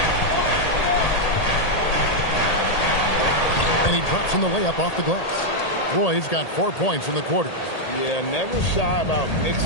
And he drops in the layup off the glass. Roy's got 4 points in the quarter. Yeah, never shy about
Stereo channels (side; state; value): right; late; 1.8 ms